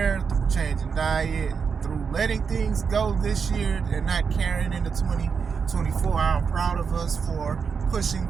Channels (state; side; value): quieter; left; 5.9 dB